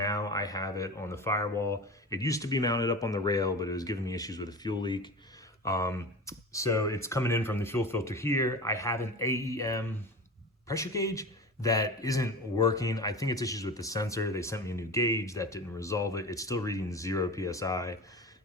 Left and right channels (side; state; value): both; normal; correlation 0.31